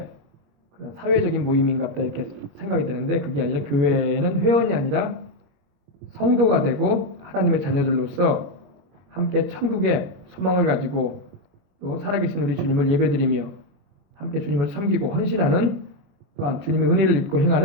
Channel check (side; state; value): left; late; 21 ms